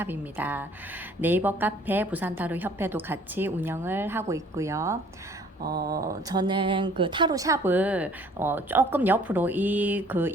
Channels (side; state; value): both; normal; correlation 0.56